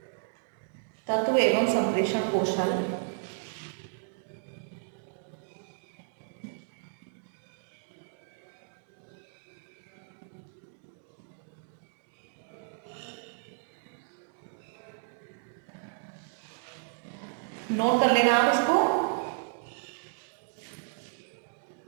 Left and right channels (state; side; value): silent; left; digital silence